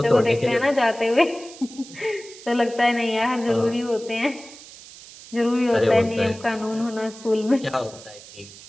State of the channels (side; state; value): right; noise; hiss, 18 dB below the sound